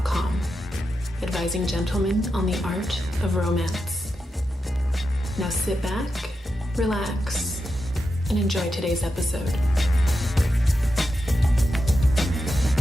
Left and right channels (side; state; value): both; normal; correlation 0.88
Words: advising gentlemen on the art of romance. Now sit back, relax, and enjoy today's episode.